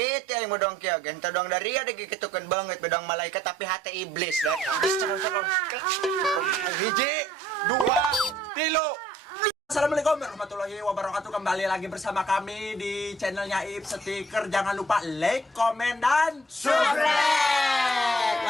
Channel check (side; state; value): both; normal; correlation 0.62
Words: aing mau dong kieu genta dong dari ada gitukeun banget bedong malaikat tapi hati iblis dah. Hiji, dua, tilu. Assalamualaikum warahmatullahi wabarakatuh. Kembali lagi bersama kami di channelnya Ip Stiker. Jangan lupa like, komen, dan subscribe.